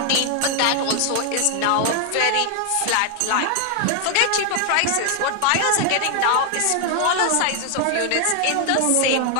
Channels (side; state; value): both; different; correlation 0.00